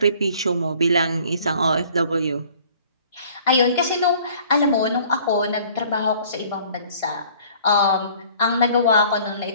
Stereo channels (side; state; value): both; inverted; correlation -0.54